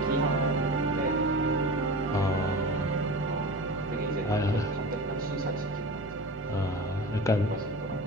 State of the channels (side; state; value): both; normal; correlation 0.31